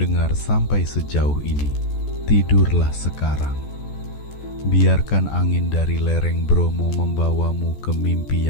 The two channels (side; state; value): right; late; 14 ms